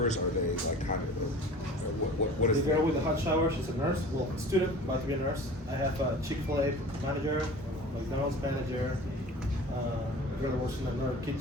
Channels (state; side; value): normal; both; correlation 0.41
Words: Are they like kind of, what is The girl with the hot shower, she's a nurse, well, student, about to be a nurse. I have a Chick-fil-A manager, McDonald's manager, a girl that works in another